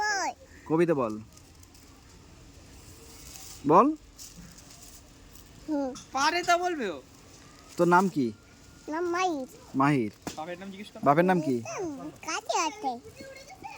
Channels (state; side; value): identical; both; correlation 1.00